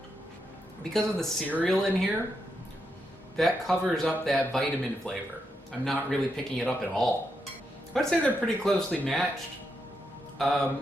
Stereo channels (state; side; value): normal; both; correlation 0.83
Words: Because of the cereal in here, that covers up that vitamin flavor. I'm not really picking it up at all. I'd say they're pretty closely matched.